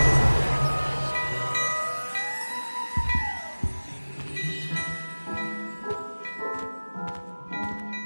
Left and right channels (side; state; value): both; inverted; correlation -1.00